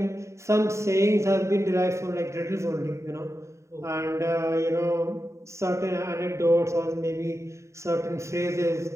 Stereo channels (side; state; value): left; late; 0.14 ms